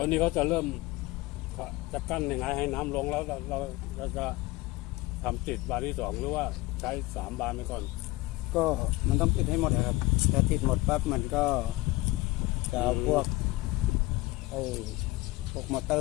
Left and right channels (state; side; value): quieter; right; 20.2 dB